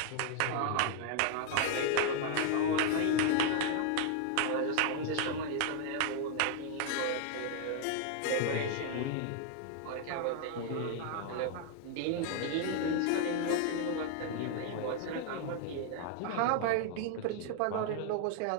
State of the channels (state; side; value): different; both; correlation 0.00